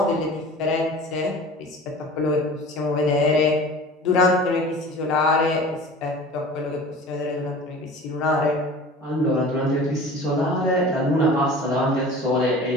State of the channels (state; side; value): normal; both; correlation 0.40